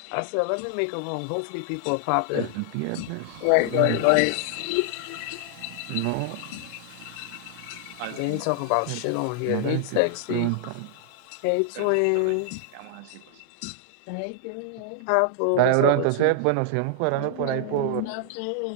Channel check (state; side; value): different; both; correlation 0.00